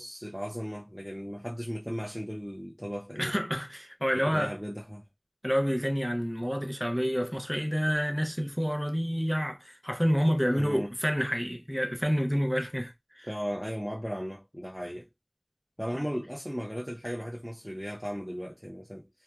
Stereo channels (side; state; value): both; identical; correlation 1.00